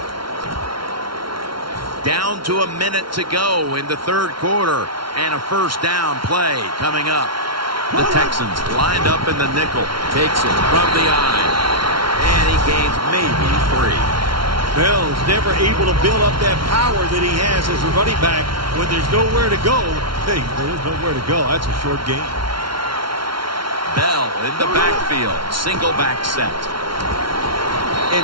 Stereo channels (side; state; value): left; late; 0.74 ms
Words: Down to a minute to go in the third quarter. And a first down play coming up. The Texans lined up in the nickel. Takes it from the eye. And he gains maybe 3. Bell's never able to build up that power that he has as a running back when there's nowhere to go. Hey, there's nowhere to go. That's a short game. Bell in the backfield. Single back set.